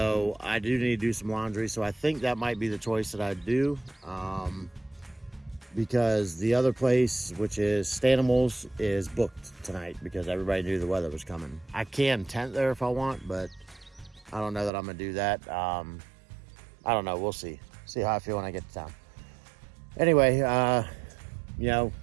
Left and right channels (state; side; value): drops out; left; at 14.7 s